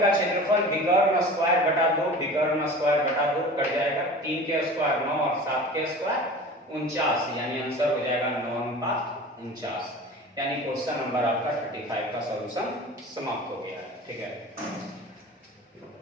क्षेत्रफल विकर्ण स्क्वायर बटा 2, विकर्ण स्क्वायर बटा 2 कट जाएगा, 3 के स्क्वायर 9 और 7 के स्क्वायर 49, यानी आंसर हो जाएगा 9:49। यानी क्वेश्चन नंबर आपका 35 का सॉल्यूशन समाप्त हो गया है। ठीक है,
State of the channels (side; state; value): both; normal; correlation 0.38